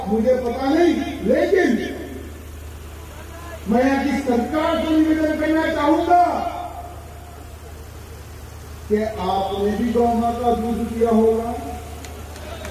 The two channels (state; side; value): identical; both; correlation 1.00